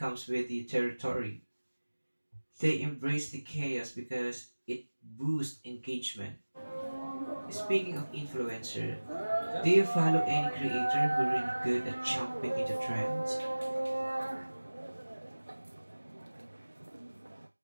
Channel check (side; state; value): both; inverted; correlation -1.00